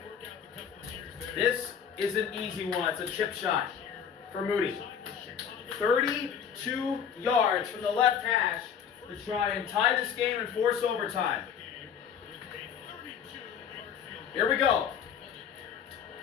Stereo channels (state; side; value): quieter; right; 7.8 dB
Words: This is an easy one. It's a chip shot for Moody. 32 yards from the left hash to try and tie this game and force overtime. Here we go.